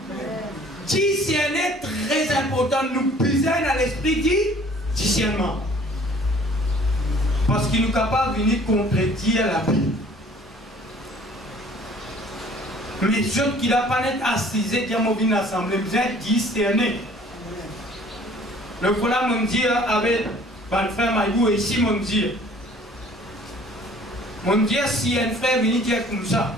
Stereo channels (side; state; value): both; normal; correlation 0.53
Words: Discerner très important. Nous besoin dans l'esprit du discernement. Parce qu'il nous capable de venir contredire la Bible. Mais ceux qui n'ont pas été assisés, qui ont vu l'assemblée, besoin de discerner. Le voilà me dit avec mon frère Maïbou et ici mon dit. Mon dit si un frère vient dire comme ça,